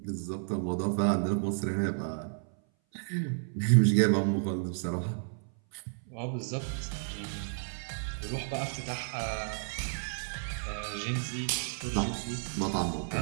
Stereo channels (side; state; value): left; silent; 56 dB below the other